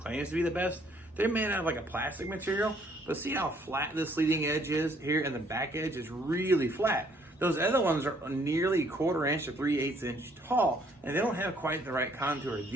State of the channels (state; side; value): normal; both; correlation 0.64